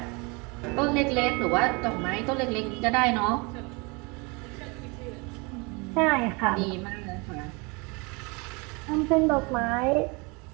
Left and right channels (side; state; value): left; quieter; 28.9 dB